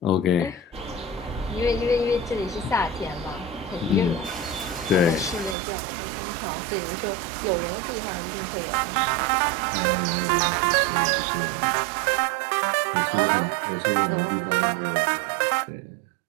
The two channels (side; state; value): left; drops out; at 5.6 s